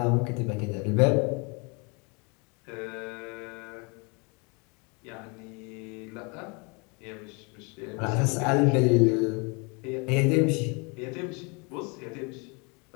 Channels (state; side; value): quieter; right; 31.5 dB